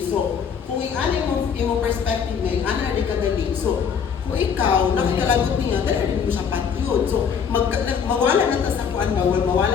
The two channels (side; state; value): right; quieter; 7.0 dB